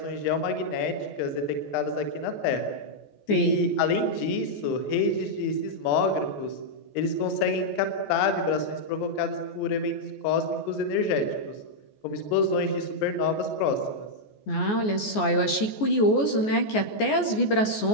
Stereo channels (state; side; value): late; right; 14 ms